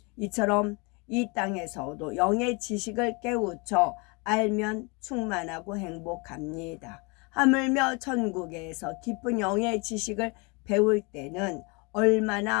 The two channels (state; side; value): quieter; right; 30.0 dB